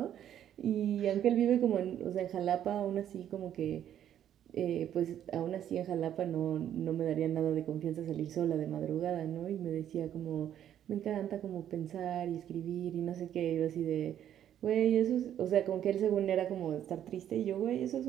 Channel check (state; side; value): quieter; left; 10.5 dB